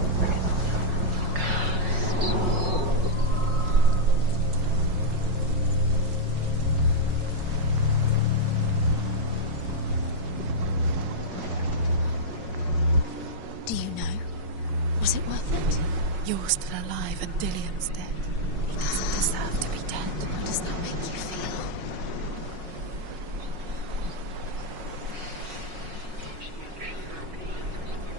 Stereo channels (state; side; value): late; left; 5.5 ms